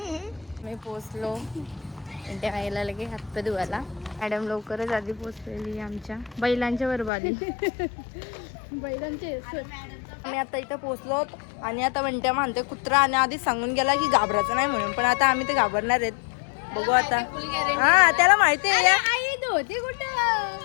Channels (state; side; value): drops out; right; at 7.1 s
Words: मी पोचलो त्या आईला लगे हातपाय धुवायला. मॅडम लवकरच आधी पोचलेली आमच्या बैलांच्या बरोबर आली. बैलांचे आम्ही आता इथं पोचलो आणि आता म्हणत्या म्हणते कुत्रा आणि आधी सांगून गेला की घाबरायचं नाही म्हणून, पण आता आम्ही ते घाबरणार आहेत. बघू आता. हा त्याला माहिती आहे. आई होती कुठं?